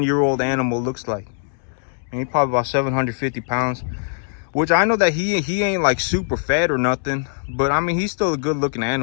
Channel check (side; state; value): right; silent; 65 dB below the other